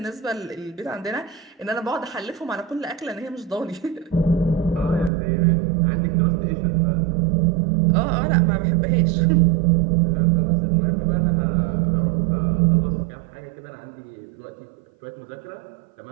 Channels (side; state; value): left; drops out; at 5.1 s